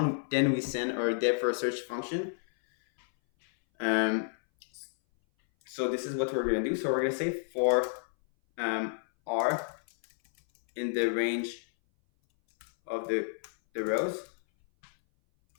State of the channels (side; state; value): right; silent; 57 dB below the other